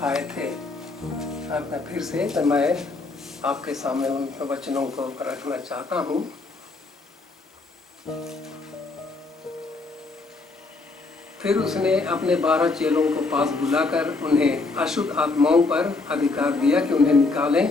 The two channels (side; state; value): right; quieter; 3.7 dB